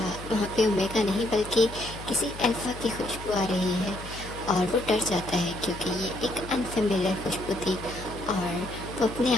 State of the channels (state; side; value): noise; left; hum, 13 dB below the sound